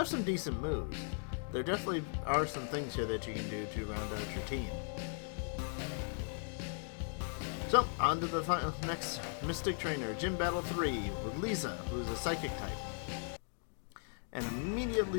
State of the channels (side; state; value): right; silent; 53 dB below the other